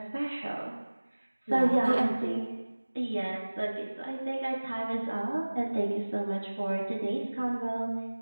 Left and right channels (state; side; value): inverted; both; correlation -1.00